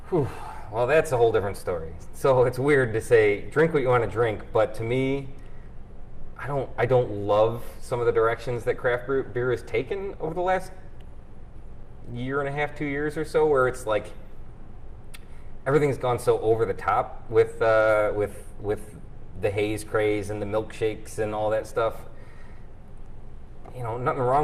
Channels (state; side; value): identical; both; correlation 1.00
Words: Whew. Well, that's a whole different story. So it's weird to say drink what you want to drink, but to me, I don't love some of the directions that craft beer has taken over the last year and a half, 2 years or so, where it's like everything's gone so over the top with the haze craze and the milkshakes and all that stuff. Nothing